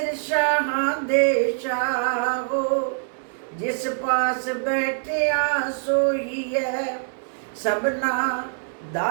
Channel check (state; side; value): silent; left; digital silence